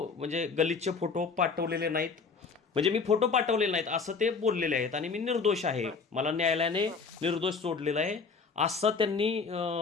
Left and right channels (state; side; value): quieter; right; 4.9 dB